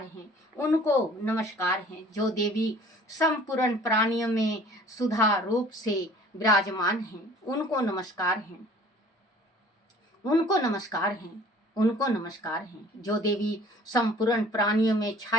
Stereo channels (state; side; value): normal; both; correlation 0.50